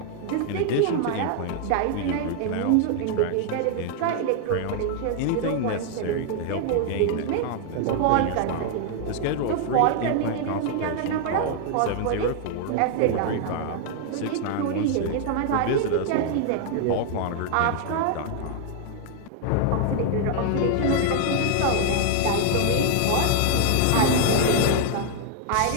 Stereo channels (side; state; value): both; different; correlation 0.00